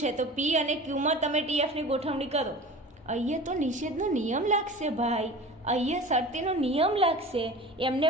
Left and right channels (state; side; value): normal; both; correlation 0.37